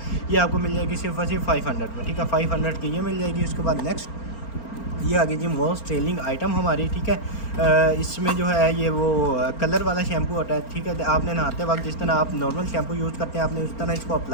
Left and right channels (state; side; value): late; right; 4.4 ms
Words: ये आपको मिल जाएगी सिर्फ और सिर्फ 500 में, ठीक है, 500 की ये मिल जाएगी। उसके बाद नेक्स्ट ये आ गई जी मोस्ट सेलिंग आइटम हमारी, ठीक है, इसमें जो है ये वो कलर वाला शैम्पू होता है, ठीक है, आपने नहाते वक्त जिस तरह आप नॉर्मल शैम्पू यूज़ करते हैं आपने उस तरह इसको